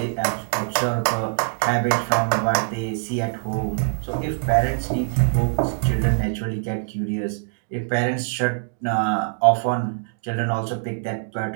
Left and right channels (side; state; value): left; silent; digital silence